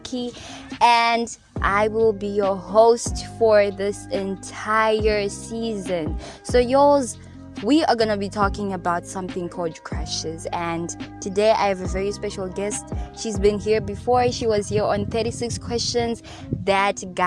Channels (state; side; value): identical; both; correlation 1.00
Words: And I will be your host for this entire season. So, yours. We are going to be talking about something called crushes, and today I have a very special guest. She's been here before. She was here on 36 questions that